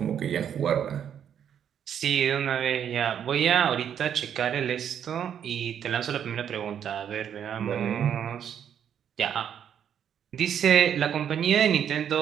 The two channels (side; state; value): left; quieter; 8.9 dB